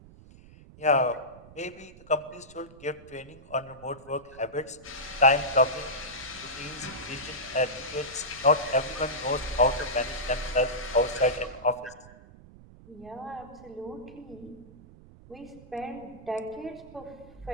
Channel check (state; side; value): noise; right; rumble, 21 dB below the sound